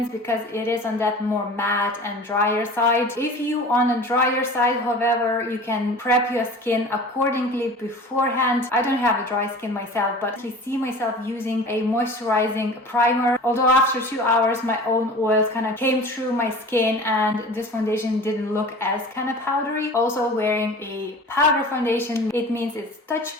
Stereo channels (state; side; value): normal; both; correlation 0.39